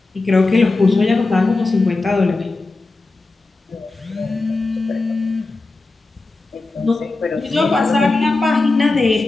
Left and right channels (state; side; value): quieter; right; 3.4 dB